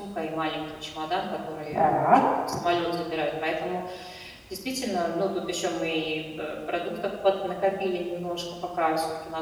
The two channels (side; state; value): both; identical; correlation 1.00